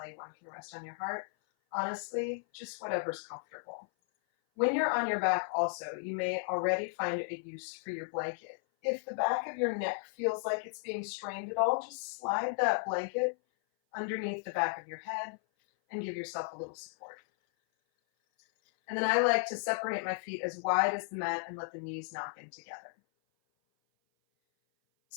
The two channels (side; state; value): right; silent; 55 dB below the other